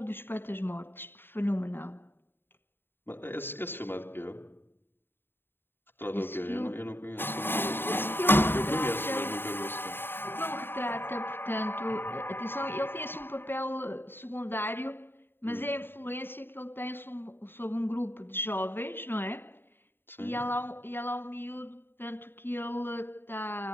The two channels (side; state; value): right; late; 0.10 ms